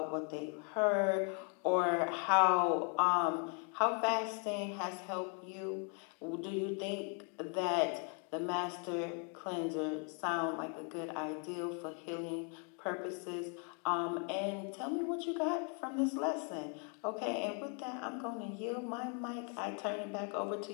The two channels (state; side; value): quieter; right; 39.2 dB